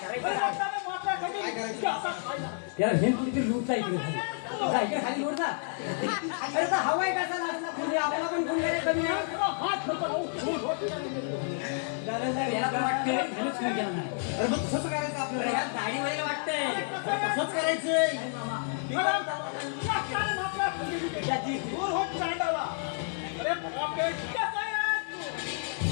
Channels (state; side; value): silent; right; 57 dB below the other